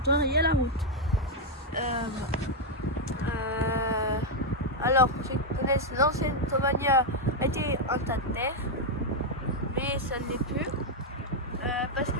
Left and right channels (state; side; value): normal; both; correlation 0.00